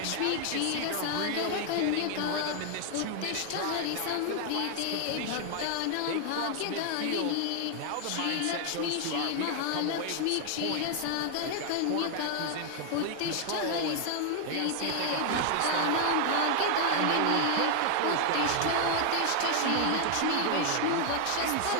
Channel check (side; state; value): both; different; correlation 0.00